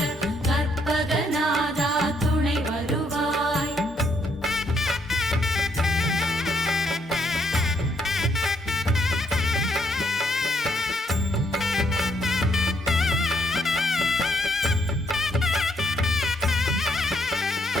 கற்பகநாதா துணை வருவாய்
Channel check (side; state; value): both; normal; correlation 0.72